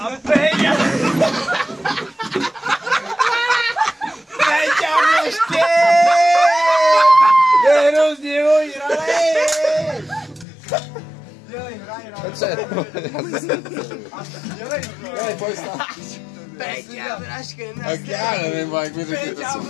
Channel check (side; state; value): right; drops out; at 10.5 s